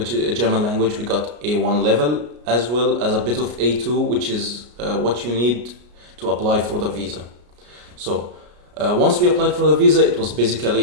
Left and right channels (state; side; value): late; left; 33 ms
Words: is a German language. We got A1 level as well as a bit of A2, which is what you need to apply for the visa. So once we applied for the visa, it was